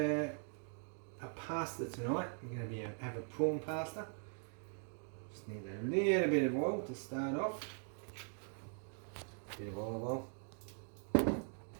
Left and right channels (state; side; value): silent; left; 50 dB below the other